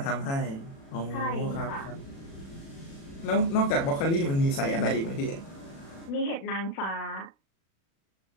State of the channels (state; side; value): late; right; 36 ms